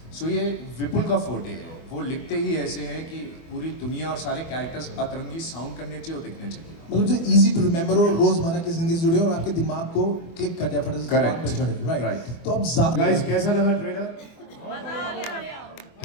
So ये विपुल का फोटे है. वो लिखते ही ऐसे हैं कि पूरी दुनिया और सारे कैरेक्टर्स अतरंगी साउंड करने चाहिए और दिखने चाहिए. मतलब जो इजी टू रिमेम्बर हो, रोजमर्रा की जिंदगी से जुड़े और आपके दिमाग को क्लिक कर दिया फटाफट से दिमाग पे चढ़े. राइट. तो अब गाइस कैसा लगा ट्रेलर?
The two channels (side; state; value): right; late; 24 ms